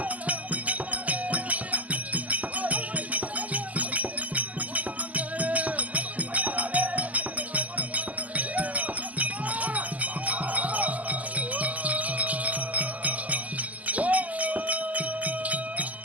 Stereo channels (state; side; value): late; left; 0.076 ms